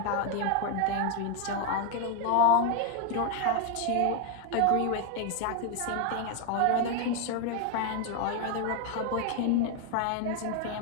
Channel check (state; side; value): different; both; correlation 0.01